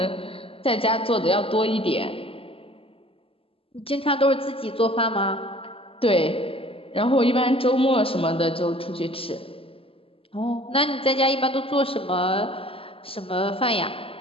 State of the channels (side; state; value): right; late; 0.27 ms